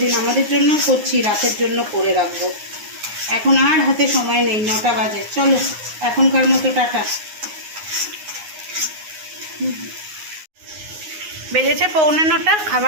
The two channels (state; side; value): late; left; 9.6 ms